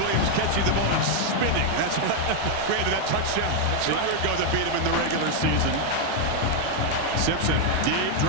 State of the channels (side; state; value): both; different; correlation 0.01